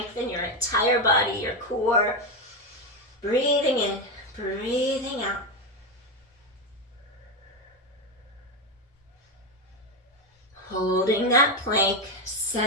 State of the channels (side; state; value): both; normal; correlation 0.11